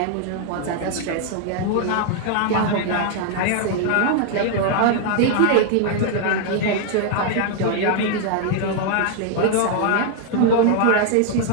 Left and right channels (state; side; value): different; both; correlation 0.00